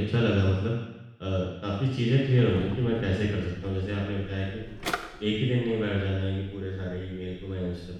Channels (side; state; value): both; identical; correlation 1.00